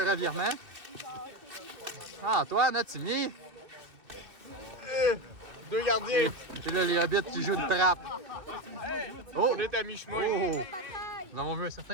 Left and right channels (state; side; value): late; left; 2.9 ms